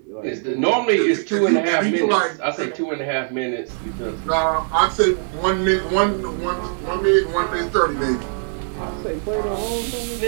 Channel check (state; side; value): silent; left; 56 dB below the other